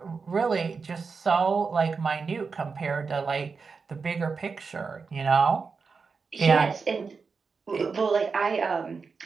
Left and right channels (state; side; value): quieter; left; 5.0 dB